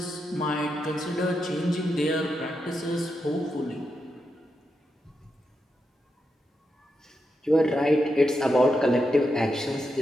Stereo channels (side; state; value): both; normal; correlation 0.86